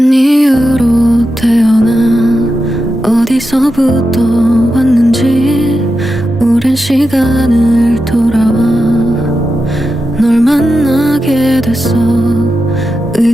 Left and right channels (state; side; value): normal; both; correlation 0.89